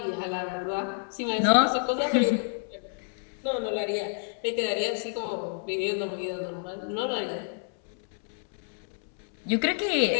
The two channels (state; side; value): silent; right; 59 dB below the other